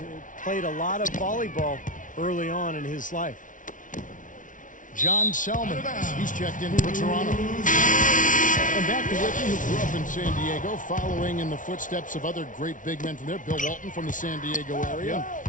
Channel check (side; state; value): right; late; 0.38 ms